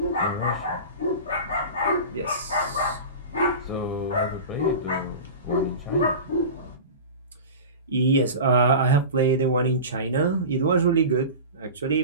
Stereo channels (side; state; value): both; inverted; correlation -0.31